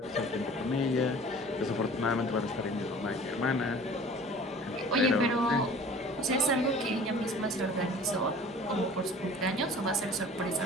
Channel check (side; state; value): both; normal; correlation 0.45